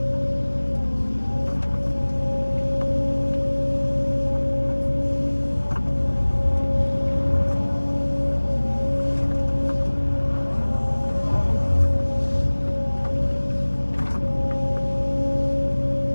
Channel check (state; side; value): inverted; both; correlation -1.00